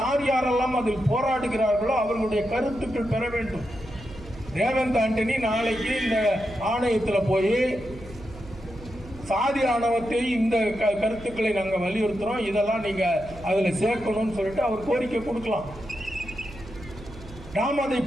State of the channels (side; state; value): right; noise; hum, 17 dB below the sound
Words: யாரெல்லாம் அதில் போராடுகிறார்களோ அவர்களுடைய கருத்துக்கள் பெற வேண்டும். ரேவந்த் ஆண்டனி நாளைக்கு இந்த ஆணையத்தில் போய் சாதி ஆணவத்தை இந்த கருத்துக்களை நாங்கள் வலியுறுத்துறோம், இதெல்லாம் நீங்க அதில் சேர்க்கணும்னு சொல்லிட்டு அவர் கோரிக்கை கொடுக்கலாம். நாம் அதை